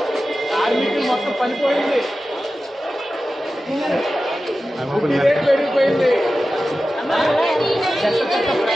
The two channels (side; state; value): both; normal; correlation 0.94